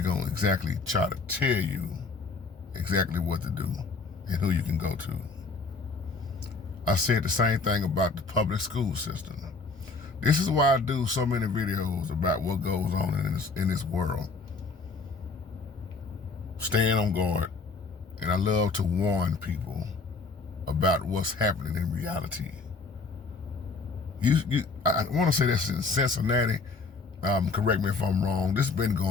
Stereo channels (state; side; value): quieter; right; 4.1 dB